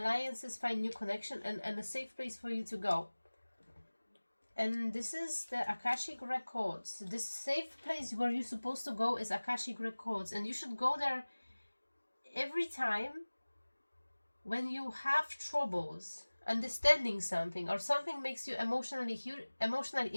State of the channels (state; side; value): inverted; both; correlation -1.00